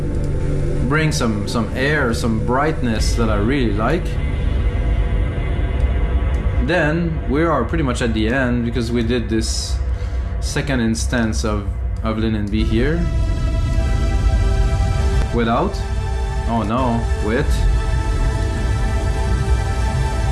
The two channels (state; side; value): identical; both; correlation 1.00